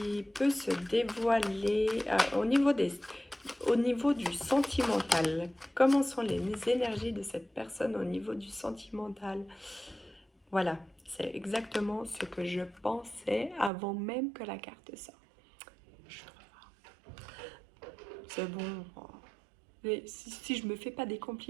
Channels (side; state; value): left; drops out; at 13.7 s